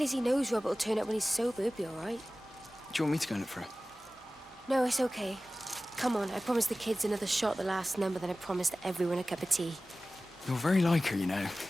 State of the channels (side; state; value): both; normal; correlation 0.96